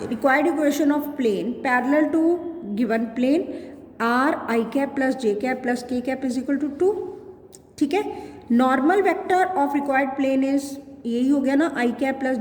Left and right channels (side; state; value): both; identical; correlation 1.00